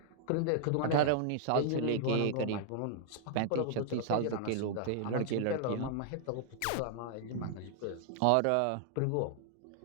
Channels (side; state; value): both; different; correlation -0.01